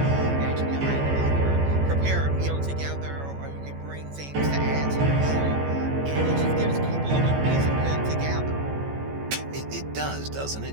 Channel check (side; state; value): left; late; 14 ms